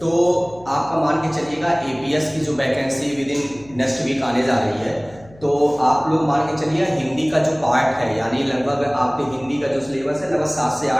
तो आपका मान के चलिएगा एपीएस की जो vacancy within next week आने जा रही है, तो आप लोग मान के चलिए हिंदी का जो पार्ट है, यानी लगभग आपके हिंदी का जो सिलेबस है लगभग 7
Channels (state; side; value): noise; left; hum, 24 dB below the sound